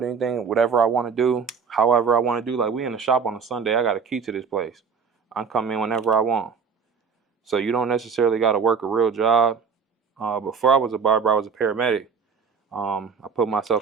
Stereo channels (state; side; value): quieter; left; 5.9 dB